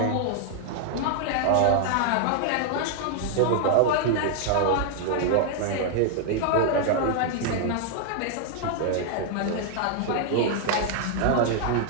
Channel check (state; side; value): different; both; correlation 0.00